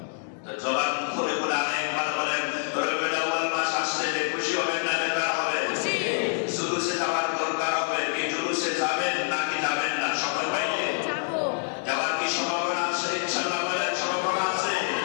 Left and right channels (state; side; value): silent; right; 58 dB below the other